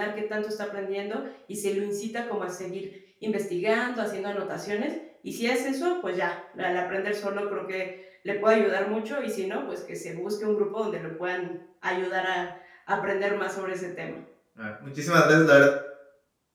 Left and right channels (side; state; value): both; identical; correlation 1.00